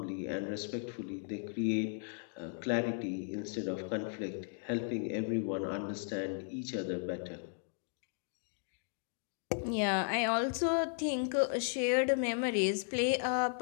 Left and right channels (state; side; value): silent; right; 54 dB below the other